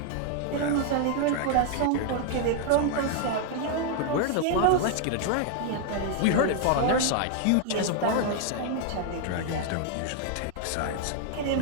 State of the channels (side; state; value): both; different; correlation 0.00